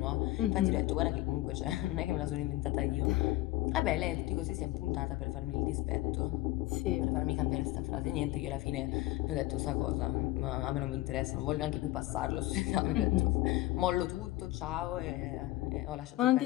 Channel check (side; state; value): right; quieter; 17.3 dB